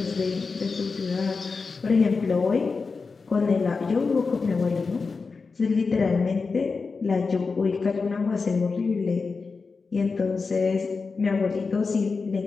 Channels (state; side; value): quieter; right; 4.5 dB